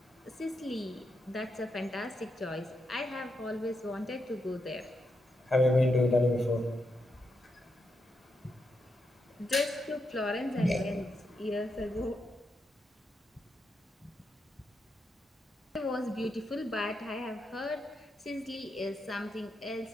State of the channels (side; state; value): both; normal; correlation 0.83